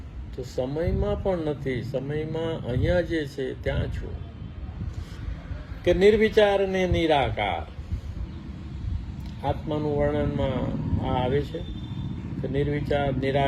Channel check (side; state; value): both; identical; correlation 1.00